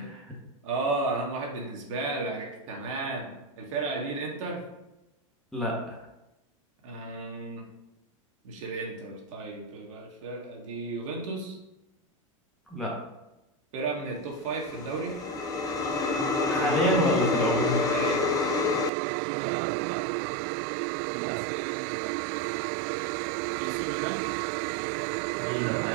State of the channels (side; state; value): left; drops out; at 18.9 s